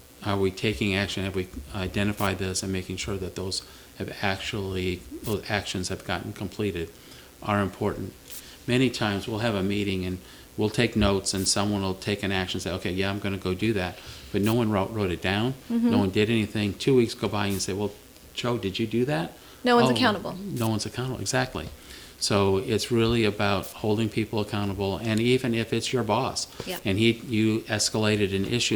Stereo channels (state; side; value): identical; both; correlation 1.00